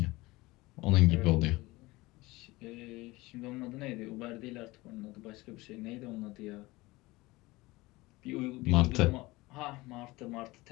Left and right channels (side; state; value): right; quieter; 21.0 dB